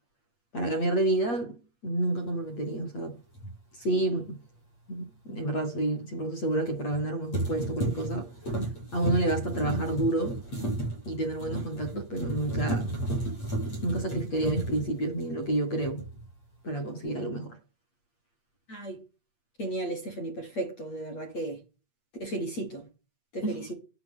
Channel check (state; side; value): late; right; 8.5 ms